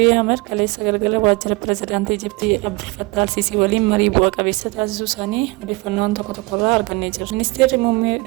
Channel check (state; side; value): quieter; left; 25.0 dB